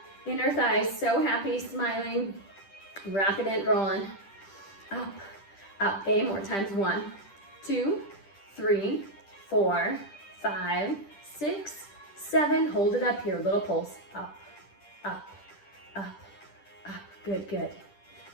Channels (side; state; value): right; late; 10 ms